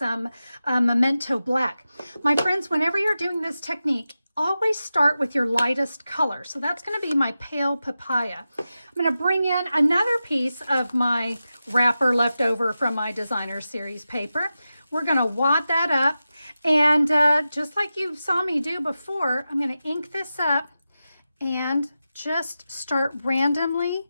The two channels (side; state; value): both; inverted; correlation -0.92